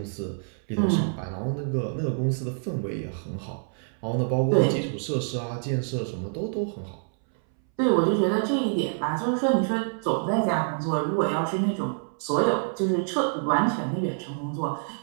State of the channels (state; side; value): silent; left; 60 dB below the other